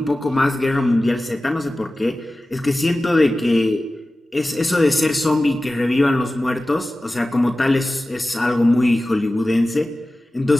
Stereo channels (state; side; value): normal; both; correlation 0.96